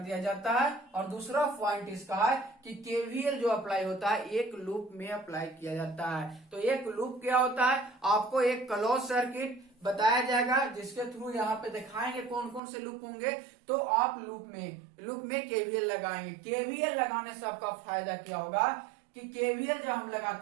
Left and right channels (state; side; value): drops out; left; at 12.6 s